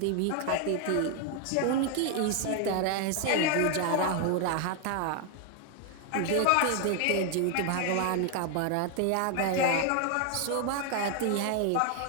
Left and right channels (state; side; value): different; both; correlation 0.00